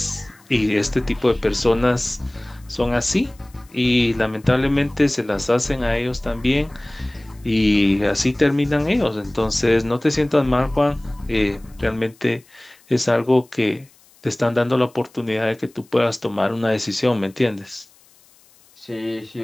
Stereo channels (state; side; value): noise; left; hiss, 29 dB below the sound